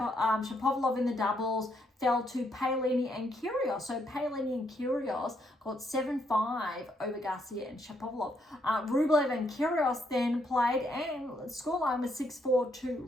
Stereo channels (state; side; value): normal; both; correlation 0.74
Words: in the doubles fell to Paolini and Kyrgios. So Paolini and Kyrgios got 7-5 over Garcia and Shapovalov. Rublev and Kyrgios then played, and scoreline was 6-4